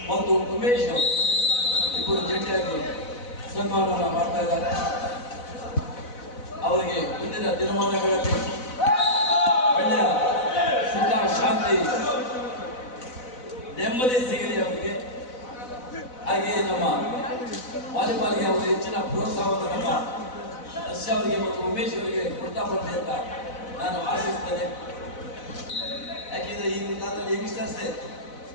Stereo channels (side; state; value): right; late; 4.0 ms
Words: ಮತ್ತು ಉಮೇಶ್ ಅವರು ಇಬ್ಬರು ಜಂಟಿಯಾಗಿ ಸನ್ಮಾನವನ್ನು ಮಾಡ್ತಾ ಇದ್ದಾರೆ. ಅವರಿಗೆ ಇಂದಿನ ದಿನಮಾನಗಳಲ್ಲಿ ಒಳ್ಳೆಯ ಸುಖ ಶಾಂತಿ ನೆಮ್ಮದಿ ಸಿಗಲಿ ಅವರಿಗೆ. ಹಾಗೆಯೇ ನಮ್ಮ ವಾಲಿಬಾಲ್ಗೆ ಅವರು ಹೆಚ್ಚಿನ ಪ್ರೋತ್ಸಾಹವನ್ನು ನಮ್ಮ ಹರ್ಷ ಅವರಿಗೆ ಮತ್ತು ಉಮೇಶ್ ಅವರಿಗೆ ಕೊಡ್ತಾ ಬರ್ತೆ ಅಂತ ನಾನು ಆಶಿಸ್ತೇನೆ. ಯಾಕೆಂದ್ರೆ ಈಗಿನ ಕಾಲದಲ್ಲಿ ಯಂಗ್ಸ್ಟರ್ಸೇ